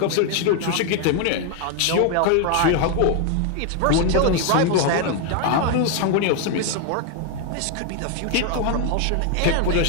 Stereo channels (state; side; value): different; both; correlation 0.01